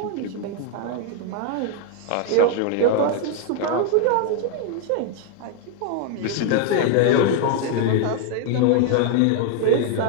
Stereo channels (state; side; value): different; both; correlation 0.01